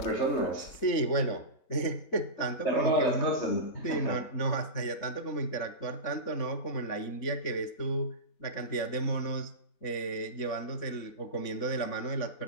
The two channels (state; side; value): late; right; 3.6 ms